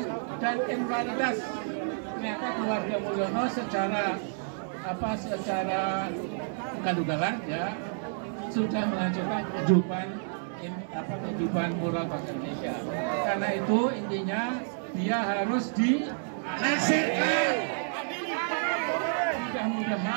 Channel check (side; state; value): left; silent; digital silence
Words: dan immoralitas. Ternyata keluarga Mulyono secara ugal-ugalan ya sudah menghancurkan kehidupan moral bangsa Indonesia. Karena itu intinya dia harus dilengsarkan.